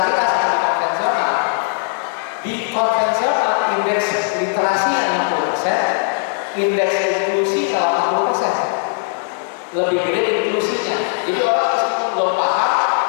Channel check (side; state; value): right; silent; digital silence